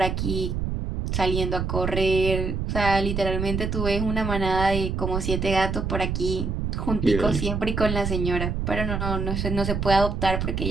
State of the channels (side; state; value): right; noise; rumble, 2 dB below the sound